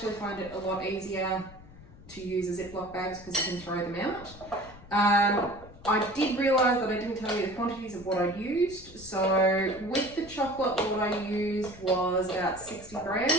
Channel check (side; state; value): left; noise; rumble, 19 dB below the sound